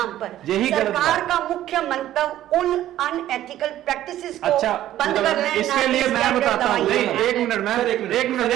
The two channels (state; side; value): quieter; left; 13.1 dB